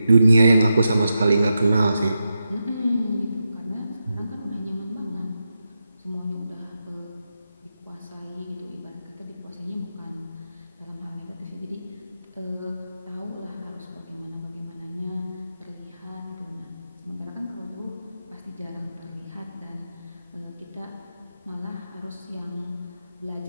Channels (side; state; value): both; inverted; correlation -0.88